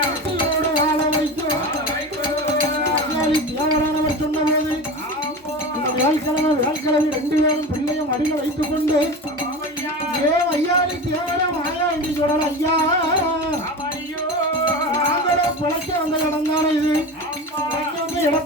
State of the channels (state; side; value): normal; both; correlation 0.28